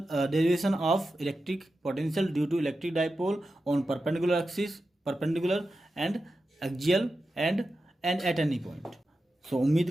derivation of electric potential due to electric dipole on perpendicular axis, perpendicular and axial and at any point. सो उम्मीद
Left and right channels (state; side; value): normal; both; correlation 0.91